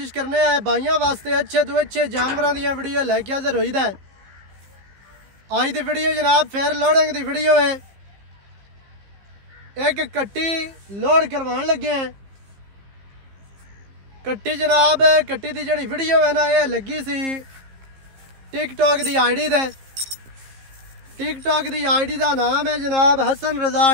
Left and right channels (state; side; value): late; left; 15 ms